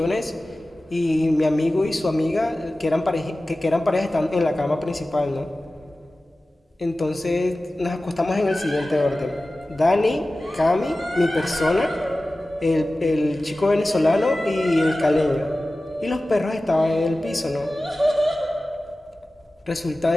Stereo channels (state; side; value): normal; both; correlation 0.96